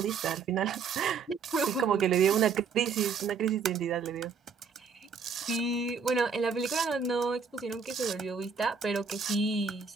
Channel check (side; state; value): left; quieter; 5.7 dB